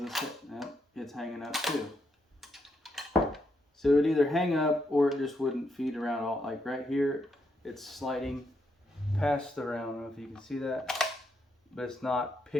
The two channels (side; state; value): both; normal; correlation 0.79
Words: It's hanging up too. So it would either hang up or it just wouldn't feed around all. Like right here, it's sliding past the round. I don't know if you can see that, but it's not